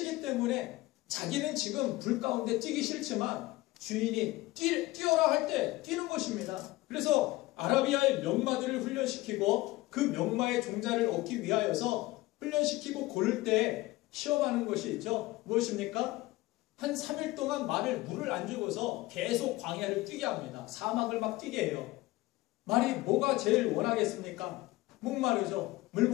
때문에 자기는 지금 불 가운데 뛰기 싫지만 주인이 뛰어라 할 때 뛰는 것입니다. 그래서 아라비아의 명마들을 훈련시키고 그 명마의 종자를 얻기 위하여서 훈련시키고 고를 때 시험하는 것이 있죠. 무엇입니까? 한 3일 동안 물을 안 주고서 계속 광야를 뛰게 합니다. 사막을 막 뛰게 해요. 말이 뭐가 제일 원하겠습니까? 목마르죠. 물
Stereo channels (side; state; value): right; quieter; 19.1 dB